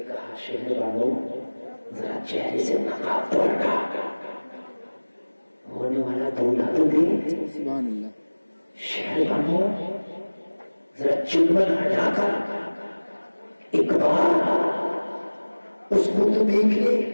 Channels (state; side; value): inverted; both; correlation -1.00